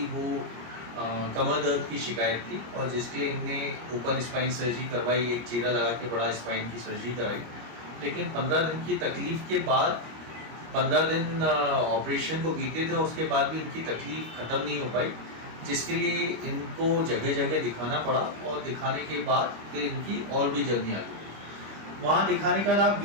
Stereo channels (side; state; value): left; late; 25 ms